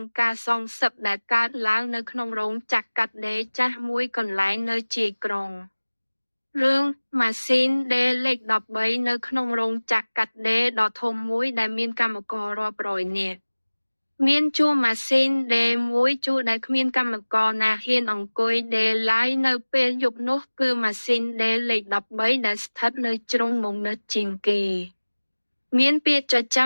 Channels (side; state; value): both; inverted; correlation -1.00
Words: ងការសងសឹកដែលកើតឡើងនៅក្នុងរោងចក្រកាត់ដេរចាស់មួយកន្លែងនៅជាយក្រុងរឿងម៉ាស៊ីនដេរលេខ13នៅក្នុងរោងចក្រកាត់ដេរដ៏ធំមួយដែលមានកម្មកររាប់រយនាក់មានជួរម៉ាស៊ីនដេរមួយជួរដែលគ្មានកម្មករណាហ៊ានអង្គុយដេរឡើយនៅពេលយប់នោះគឺម៉ាស៊ីនដេរលេខ13ដែលស្ថិតនៅជ្រុងមុខនិតជាងគេមានពាក្យចចា